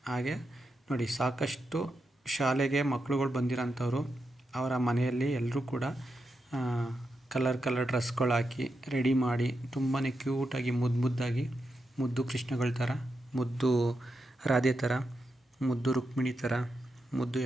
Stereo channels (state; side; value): normal; both; correlation 0.86